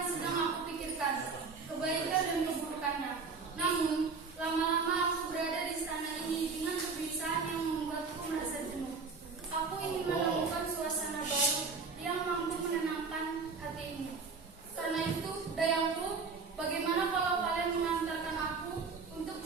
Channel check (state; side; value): quieter; left; 4.8 dB